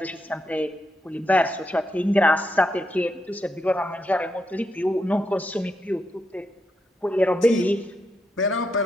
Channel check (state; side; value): normal; both; correlation 0.81